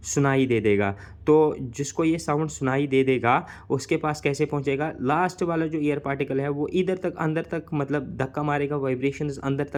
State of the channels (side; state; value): both; identical; correlation 1.00